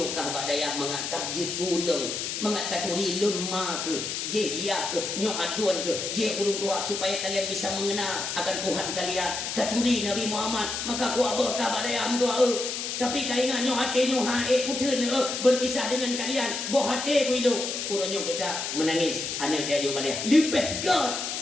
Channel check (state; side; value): noise; left; hiss, 4 dB below the sound